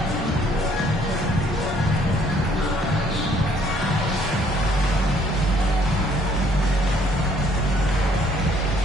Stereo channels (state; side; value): normal; both; correlation 0.63